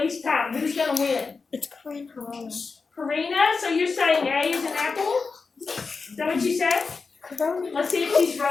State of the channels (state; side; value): quieter; right; 4.6 dB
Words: time? Who's gonna win? It's Karina. Karina, so you're saying A is an apple? Is that what you said? Let's see if she's